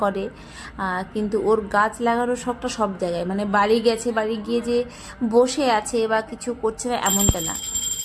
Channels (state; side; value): identical; both; correlation 1.00